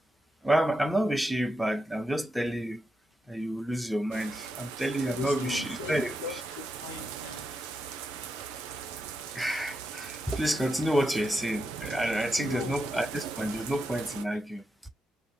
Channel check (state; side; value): normal; both; correlation 0.86